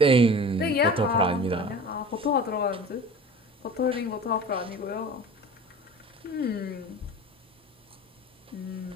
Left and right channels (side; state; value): both; normal; correlation 0.39